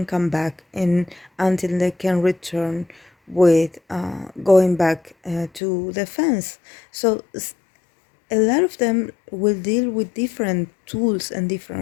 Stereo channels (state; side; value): drops out; right; at 5.6 s